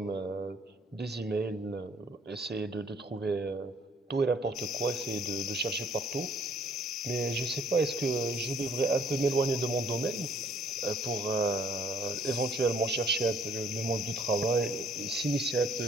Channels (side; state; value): both; normal; correlation 0.61